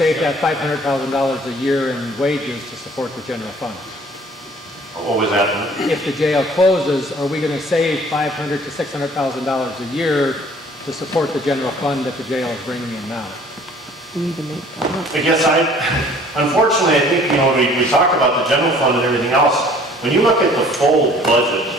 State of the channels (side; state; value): both; normal; correlation 0.54